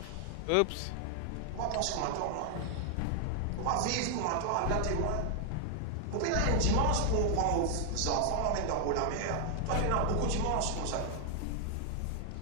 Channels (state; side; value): different; both; correlation 0.00